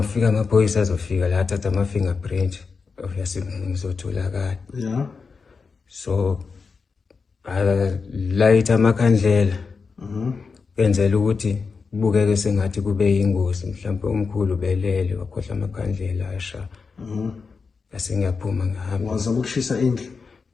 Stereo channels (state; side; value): quieter; right; 4.9 dB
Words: amaphoyisa azofika la athatha ama fingerprint obviously ngizotholakala. Yeah. So light amakhandlela. Kwenzela ukuthi kubukeke sengathi kube yingozi mhlawumbe umkhulu belele wakhohla amakhandlela asha. Bese ngiyaphuma ngihamba. Wazama ukushisa indlu?